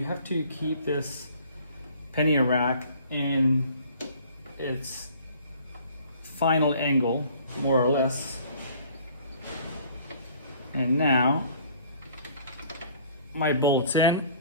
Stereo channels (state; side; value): inverted; both; correlation -0.53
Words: have to keep this Pannier rack in its final angle, more or less. And now my bolt's in.